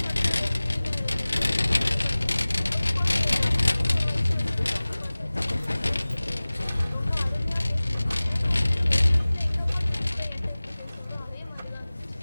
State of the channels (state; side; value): inverted; both; correlation -0.99